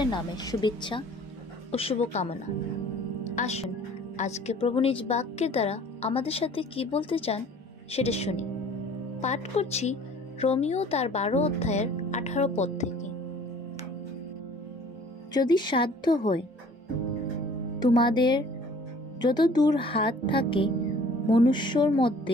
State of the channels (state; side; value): normal; both; correlation 0.51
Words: নামে শুভেচ্ছা ও শুভকামনা। আসুন আজকে প্রভু নিজ বাক্যের দ্বারা আমাদের সাথে কি বলতে চান সেটা শুনি। পাঠ করছি রোমিও তার 12 অধ্যায়ের 18 পদ থেকে। যদি সাধ্য হয় তোমাদের যত দূর হাত থাকে মনুষ্যর